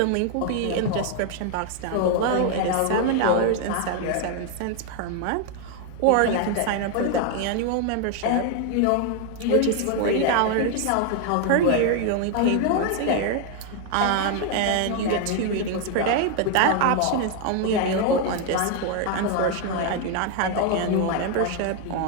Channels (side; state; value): both; different; correlation 0.00